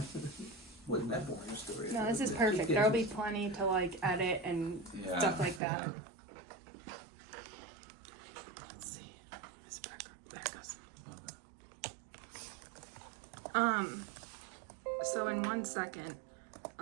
Wasn't that boring a story? No, this is perfect. There'll be plenty to like edit and stuff like that. Yeah. Let's see. This back goes. Okay. So in 1 second,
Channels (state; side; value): drops out; left; at 5.6 s